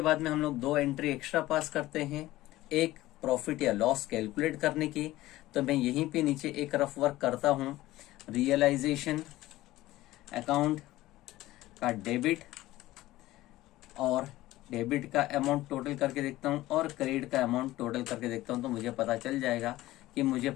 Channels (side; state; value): right; quieter; 16.7 dB